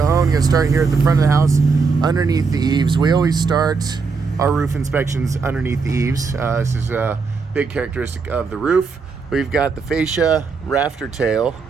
Going to start here at the front of the house underneath the eaves. We always start our roof inspections underneath the eaves. This is a big characteristic of the roof. We've got the fascia, rafter tail,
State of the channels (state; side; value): quieter; left; 4.8 dB